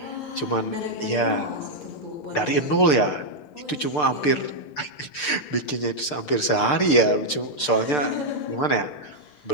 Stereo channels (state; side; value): late; right; 6.7 ms